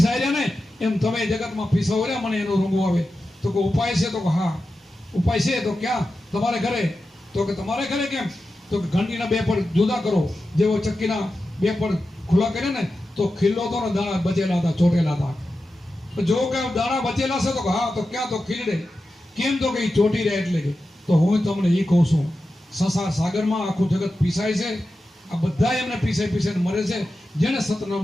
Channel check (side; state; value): both; normal; correlation 0.92